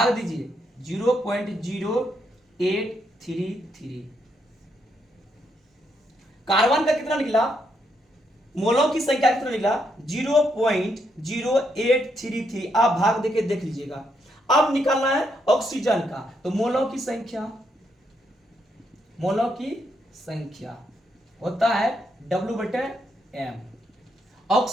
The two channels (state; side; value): normal; both; correlation 0.77